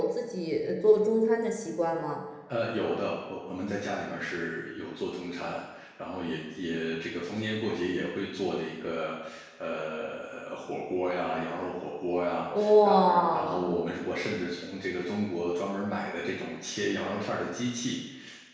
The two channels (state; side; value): identical; both; correlation 1.00